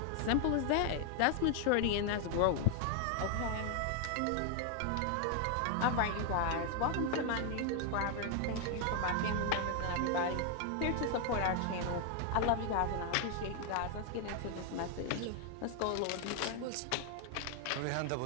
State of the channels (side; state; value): both; different; correlation 0.00